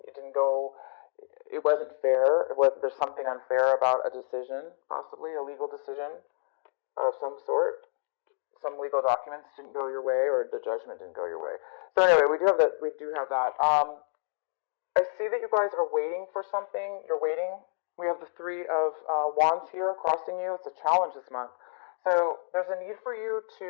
It wasn't fair. There's something unfair about a decision, possibly a legal decision of some sort. Some legal documents didn't go your way, or the judgment didn't go your way. So anyway, we do have that. I see that you guys are waiting for something. You're waiting. We have the Three of Wands here crossing you. It's a challenge this month. So there's a need for you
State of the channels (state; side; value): silent; right; digital silence